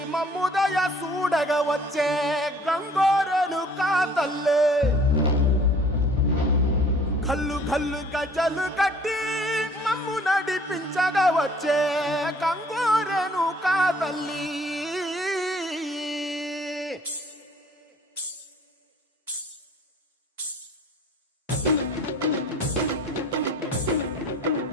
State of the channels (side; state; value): both; normal; correlation 0.54